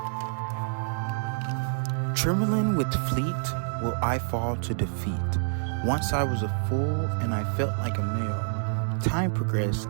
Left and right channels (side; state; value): left; silent; 60 dB below the other